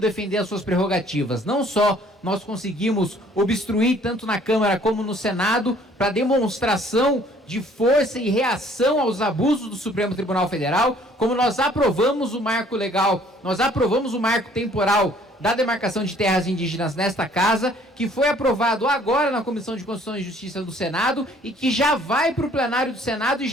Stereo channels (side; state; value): both; normal; correlation 0.58